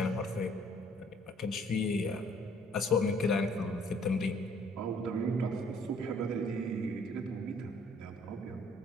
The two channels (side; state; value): both; normal; correlation 0.60